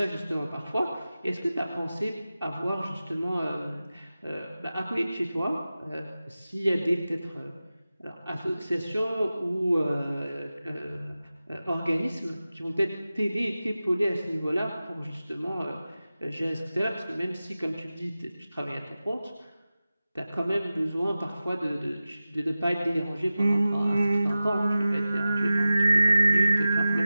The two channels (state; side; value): inverted; both; correlation -0.95